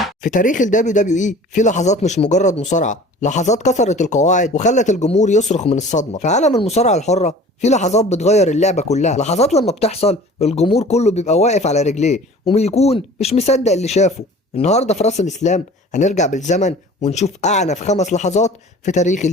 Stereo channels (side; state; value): both; normal; correlation 0.44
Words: في تاريخ ال WWE في لحظات مش مجرد مصارعة، لحظات كسرت القواعد وخلت الجمهور يصرخ من الصدمة. في عالم المصارعة الحرة في لحظات بتغير اللعبة كلها، لحظات لما بتحصل الجمهور كله بيبقى واقف على رجليه وبيكون مش مصدق اللي شافه. النهاردة في راس الإسلام هنرجع بالزمن ونشوف أعنف 5 لحظات في تاريخ